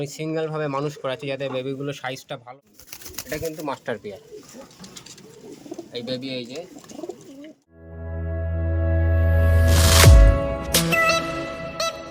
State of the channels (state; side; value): identical; both; correlation 1.00